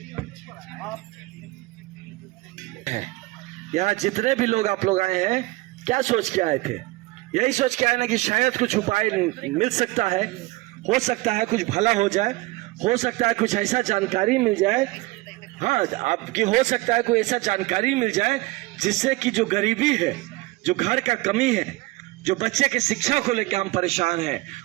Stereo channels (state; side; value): quieter; left; 20.9 dB